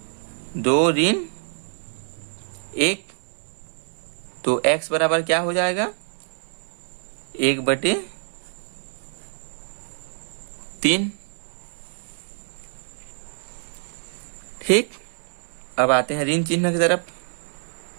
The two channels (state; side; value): silent; left; 59 dB below the other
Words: 2 ऋण 1, तो x बराबर क्या हो जाएगा 1/3। ठीक, अब आते हैं ऋण चिन्ह की तरफ।